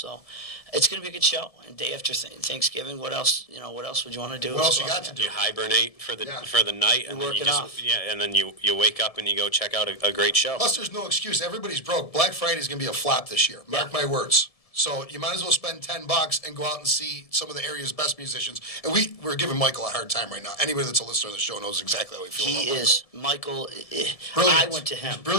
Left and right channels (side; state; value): right; late; 1.7 ms